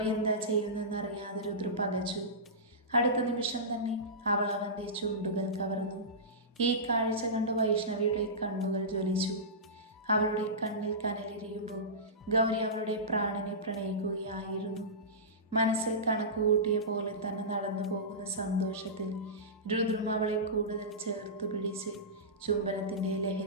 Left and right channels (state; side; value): normal; both; correlation -0.19